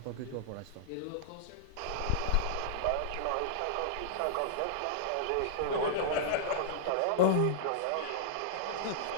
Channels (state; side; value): different; both; correlation -0.02